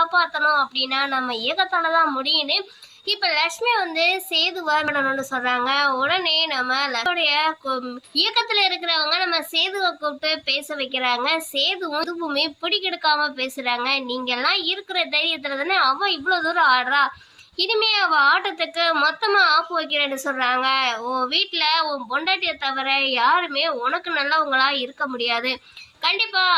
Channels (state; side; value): identical; both; correlation 1.00